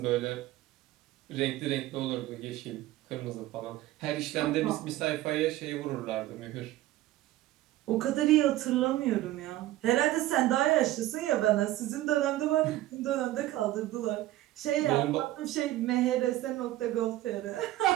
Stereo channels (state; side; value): quieter; left; 15.5 dB